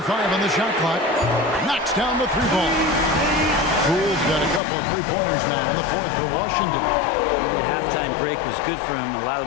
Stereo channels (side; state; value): right; drops out; at 4.6 s